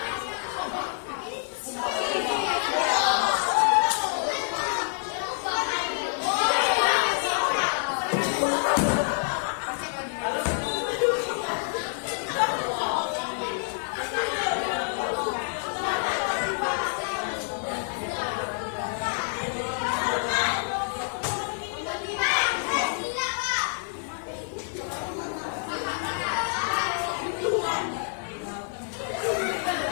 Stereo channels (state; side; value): silent; right; 60 dB below the other